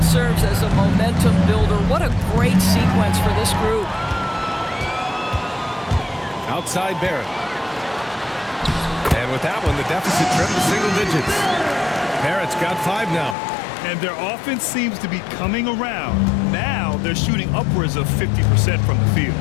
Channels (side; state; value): right; drops out; at 13.4 s